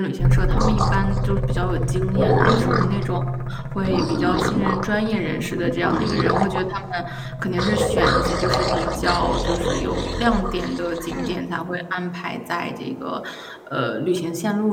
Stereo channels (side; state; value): both; identical; correlation 1.00